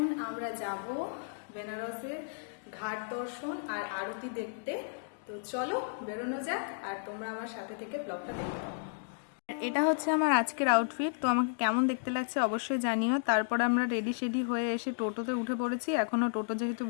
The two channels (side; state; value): right; silent; digital silence